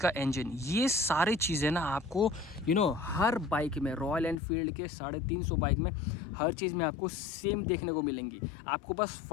इंजन, ये सारी चीज़ें ना आपको हर बाइक में, रॉयल एनफील्ड के 350 बाइक में हर चीज़ में आपको सेम देखने को मिलेंगी। आपको बस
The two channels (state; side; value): drops out; right; at 4.4 s